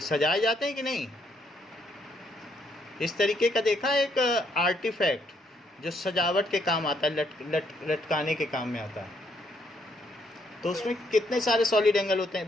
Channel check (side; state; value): both; normal; correlation 0.72